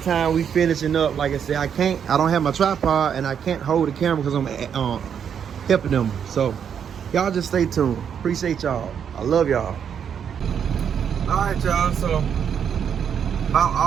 time we finishing up. Like I said, I don't have my tripod and I can't hold the camera because I'm helping them. So y'all just stay tuned. Appreciate y'all. I love y'all. All right, y'all. So about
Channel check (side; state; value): left; quieter; 7.9 dB